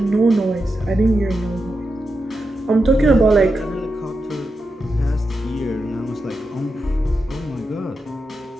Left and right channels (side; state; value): both; normal; correlation 0.88